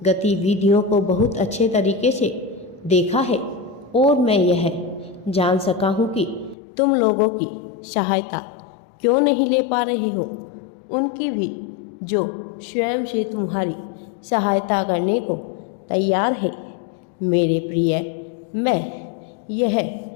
गतिविधियों को बहुत अच्छे तरीके से देखा है और मैं यह जान सका हूँ कि तुम लोगों की सहायता क्यों नहीं ले पा रहे हो। उनकी भी जो स्वयं से तुम्हारी सहायता करने को तैयार है। मेरे प्रिय, मैं यह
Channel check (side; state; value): right; drops out; at 6.6 s